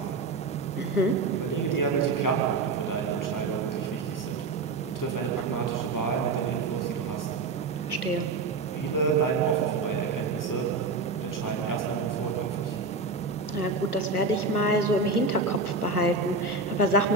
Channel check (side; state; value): left; quieter; 3.7 dB